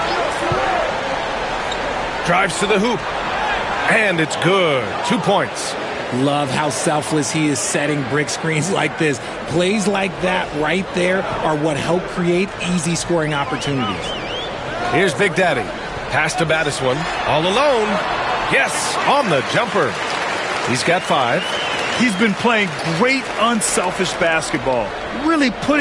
Drives to the hoop. And it's good. 2 points. Love how selfless he is setting brick screens like this. Plays like that right there are what help create easy scoring opportunities. Here's Big Daddy. Pass to Battiswan. All alone. Yes, on the jumper. He's got 5. He's been playing great unselfish basketball, really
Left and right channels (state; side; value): identical; both; correlation 1.00